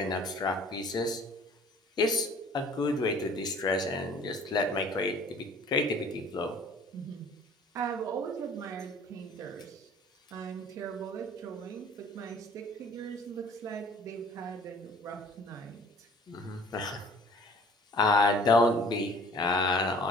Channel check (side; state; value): both; normal; correlation 0.51